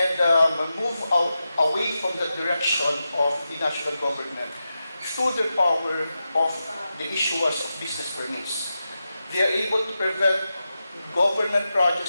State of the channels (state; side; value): inverted; both; correlation -0.90